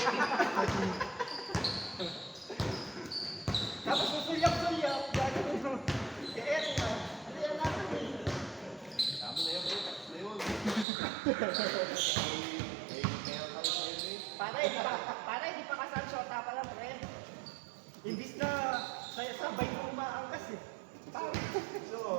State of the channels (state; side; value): drops out; left; at 10.9 s